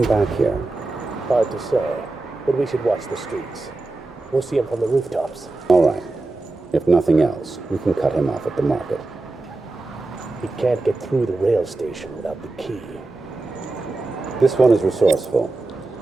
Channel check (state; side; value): quieter; left; 3.1 dB